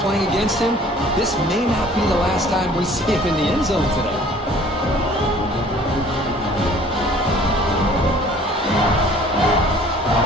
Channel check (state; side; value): normal; both; correlation 0.52